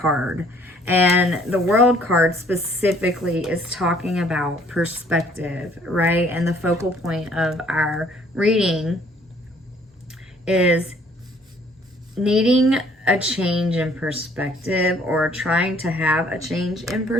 And the World card specifically is talking about perspective, right? And the focal point of our reading is needing a change in perspective, or trying to have a change in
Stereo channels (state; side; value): normal; both; correlation 0.60